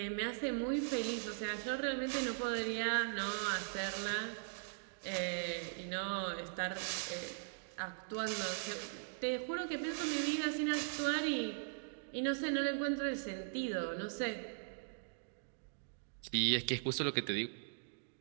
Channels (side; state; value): left; silent; digital silence